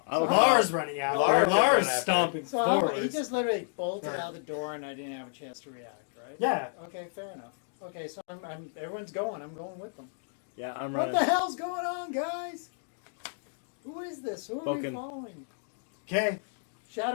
I'm Lars running out. Lars Lars running after stomping So forward. he just literally bolted Right. out the door and I didn't have a chance to react, right? Yeah. Okay, fair enough. Okay, so I'm everyone's going. I'm going with them. Yeah, I'm What running. the hell's going on, guys? Who is this? Who are we Spoken. following? Okay.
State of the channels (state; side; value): silent; right; digital silence